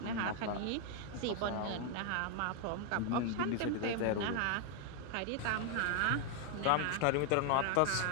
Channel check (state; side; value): different; both; correlation 0.00